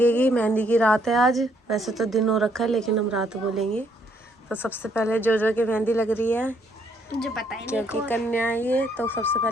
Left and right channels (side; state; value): both; normal; correlation 0.70